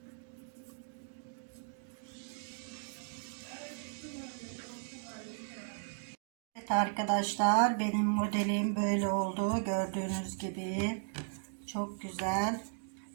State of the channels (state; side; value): silent; left; digital silence